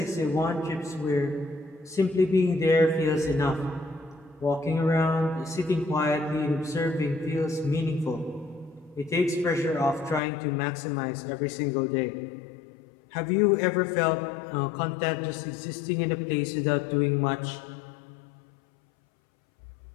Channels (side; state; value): right; drops out; at 10.2 s